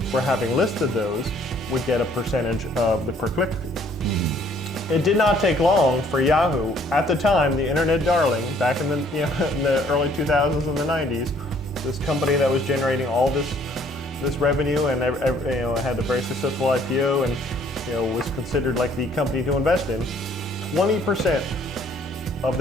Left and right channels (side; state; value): both; normal; correlation 0.61